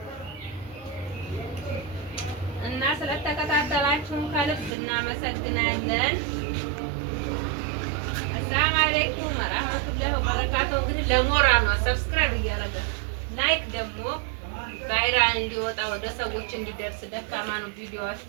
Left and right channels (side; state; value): left; drops out; at 4.7 s